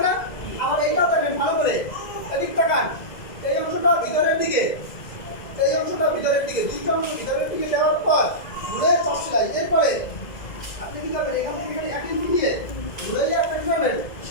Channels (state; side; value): late; right; 2.0 ms